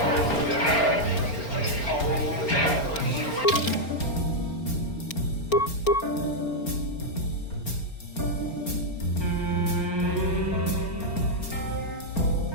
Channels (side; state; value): right; late; 4.4 ms